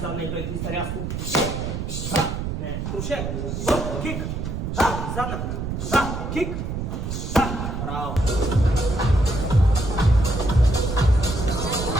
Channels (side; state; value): right; noise; rumble, 4 dB below the sound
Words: Задна бек твиста рязко. Не. Крушет. Кик. Задна. Кик. Браво.